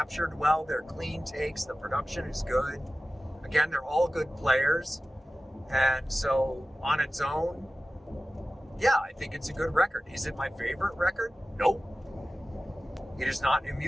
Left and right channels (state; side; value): normal; both; correlation 0.96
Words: well. They're clean takes. The production is good. Again, they're all good players, and so on its own, yeah, I think it's a good record. Is it my favorite record? Nope. It is not